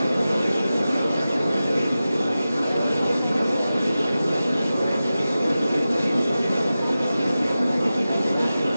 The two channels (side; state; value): both; inverted; correlation -0.94